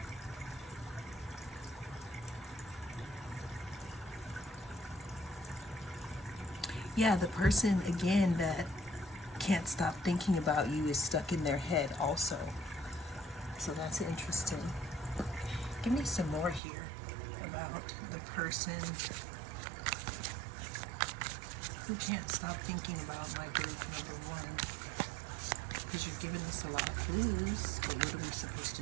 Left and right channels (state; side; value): drops out; left; at 16.6 s